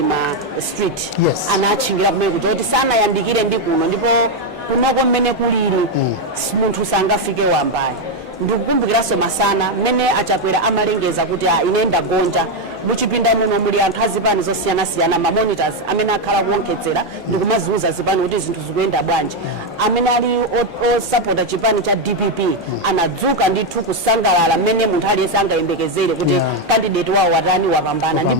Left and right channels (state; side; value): normal; both; correlation 0.04